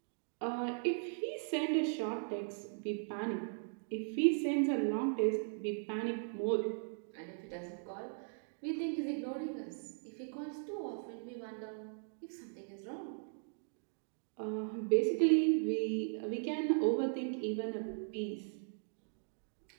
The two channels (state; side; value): silent; left; digital silence